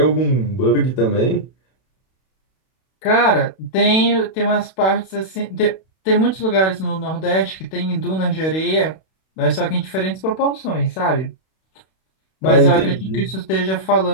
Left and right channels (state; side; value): late; right; 32 ms